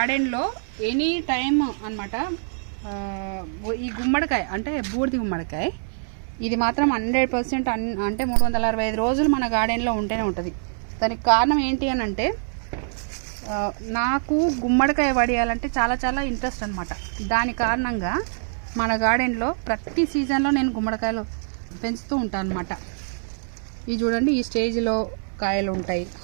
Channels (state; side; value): silent; left; 62 dB below the other